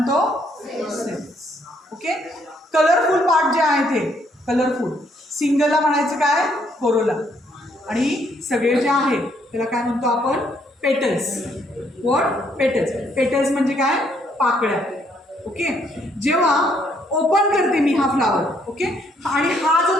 सेपल्स. ओके, कलरफुल पार्ट जे आहे ते कलरफुल, सिंगलला म्हणायचं काय, कोरोला. आणि सगळे जे आहे त्याला काय म्हणतो आपण, पेटल्स. What, petals. पेटल्स म्हणजे काय, पाकळ्या. ओके, जेव्हा ओपन करते मी हा फ्लावर, ओके, आणि हा जो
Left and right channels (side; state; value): both; normal; correlation 0.70